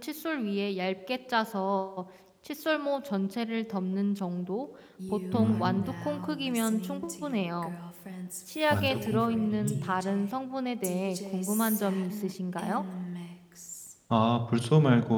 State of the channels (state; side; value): identical; both; correlation 1.00